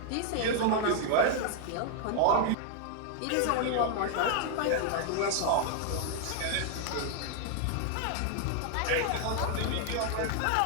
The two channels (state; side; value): different; both; correlation 0.00